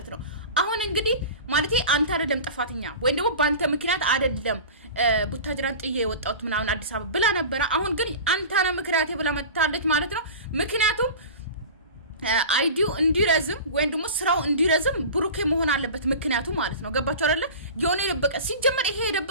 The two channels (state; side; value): inverted; both; correlation -0.34